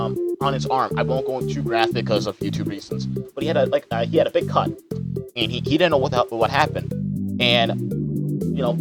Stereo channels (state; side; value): identical; both; correlation 1.00